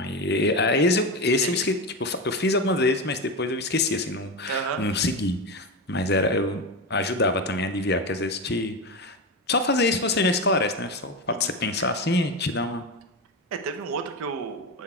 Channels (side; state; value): both; normal; correlation 0.17